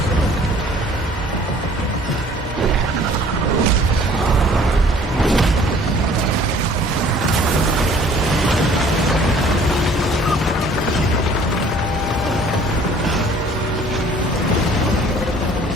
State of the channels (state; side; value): normal; both; correlation 0.54